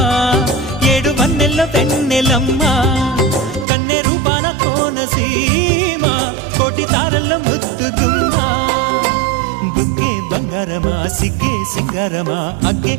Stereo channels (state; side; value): drops out; left; at 3.7 s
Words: ఏడు వన్నెల్లో వెన్నెలమ్మా కన్నె రూపాన కోనసీమ కోటి తారల్లో ముద్దుదుమ్మా బుగ్గే బంగారమా సిగ్గే సింగారమా అగ్గే